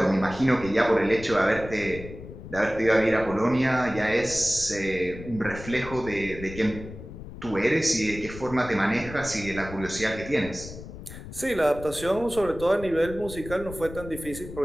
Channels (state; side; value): noise; left; rumble, 13 dB below the sound